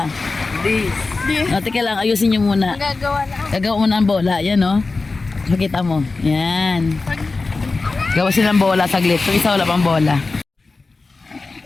O, teka lang, ayusin nyo muna. Gagawa mo ng bola, yan, o. Makita mo, yan. Gawa silang bola saglit. So, isa wala pang bola.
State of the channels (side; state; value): right; quieter; 3.8 dB